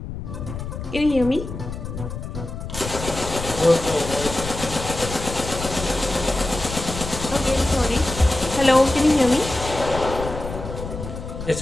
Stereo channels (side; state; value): left; noise; rumble, 8 dB below the sound